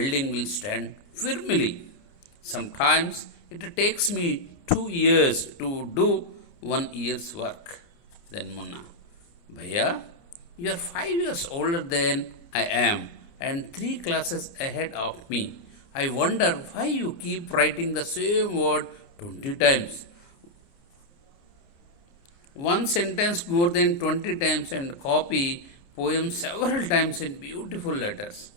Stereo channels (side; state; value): right; late; 29 ms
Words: will stand firmly. Sometimes it takes me 2 years to do 1 year's work. Then Munna, Bhaiya, you are 5 years older than I am and 3 classes ahead of me. I wonder why you keep writing the same word 20 times. One sentence more than 20 times and copy poems several times in beautiful letters.